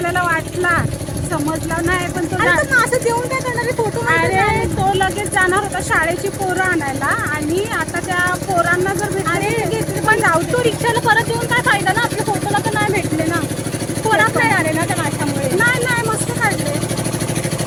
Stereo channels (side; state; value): left; noise; hum, 22 dB below the sound